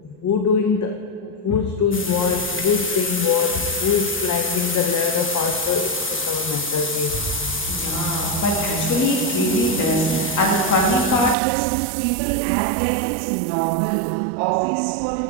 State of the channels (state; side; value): drops out; left; at 11.4 s